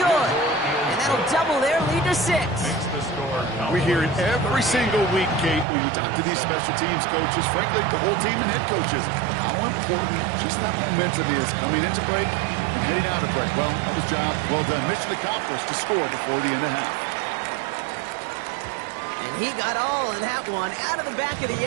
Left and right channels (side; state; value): left; drops out; at 5.7 s